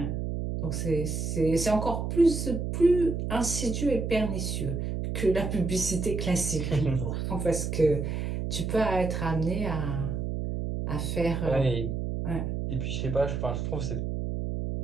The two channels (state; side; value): noise; right; hum, 2 dB below the sound